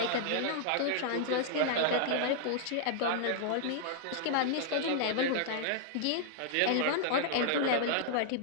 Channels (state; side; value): different; both; correlation -0.01